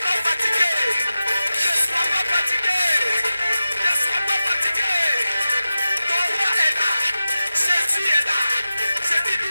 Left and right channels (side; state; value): both; inverted; correlation -0.94